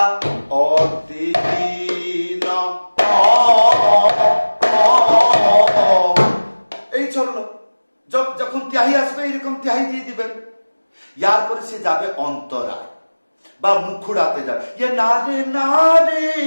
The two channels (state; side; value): inverted; both; correlation -1.00